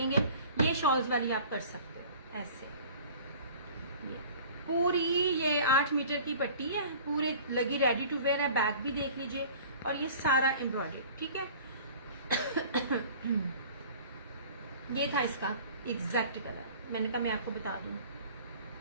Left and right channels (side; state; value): both; inverted; correlation -0.45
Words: ये शॉल्स वाली आप कर सकते हो ऐसे। ये पूरी ये 8 मीटर की पट्टी है, पूरी लगी, रेडी टू वेयर है। बैग भी देख लीजिए, और ये सारा एम्ब्रॉयडरी, ठीक है। ये था इसका एग्जैक्ट कलर, मैंने कहा मैं आपको बता दूं।